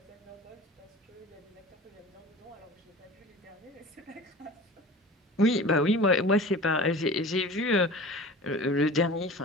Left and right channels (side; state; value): both; normal; correlation 0.38